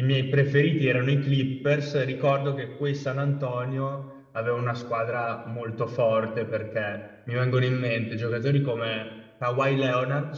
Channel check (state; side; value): identical; both; correlation 1.00